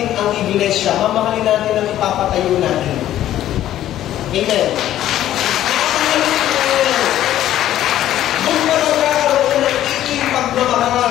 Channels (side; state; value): right; quieter; 12.6 dB